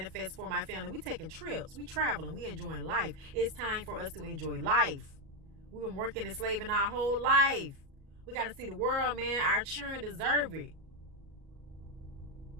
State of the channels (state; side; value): late; left; 37 ms